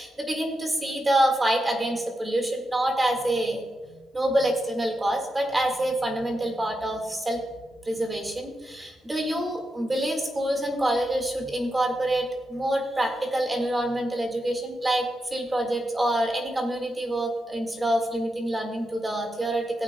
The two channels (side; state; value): both; normal; correlation 0.86